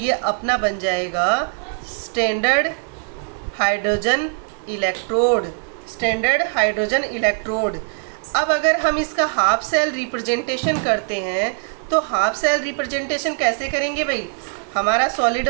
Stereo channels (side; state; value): left; silent; 60 dB below the other